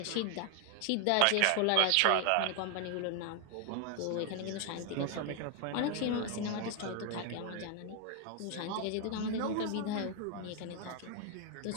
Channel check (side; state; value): both; different; correlation 0.00